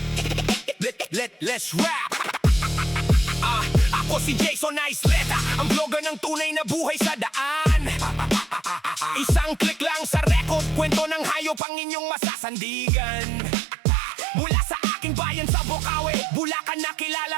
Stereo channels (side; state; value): left; drops out; at 11.6 s